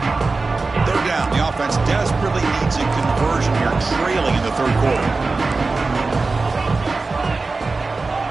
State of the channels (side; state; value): left; quieter; 3.8 dB